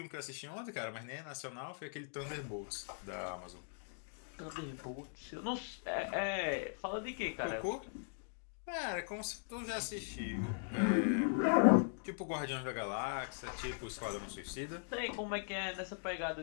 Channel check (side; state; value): right; silent; digital silence